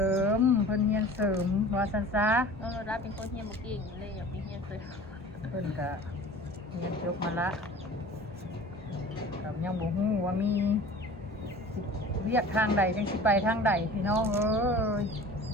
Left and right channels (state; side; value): normal; both; correlation 0.42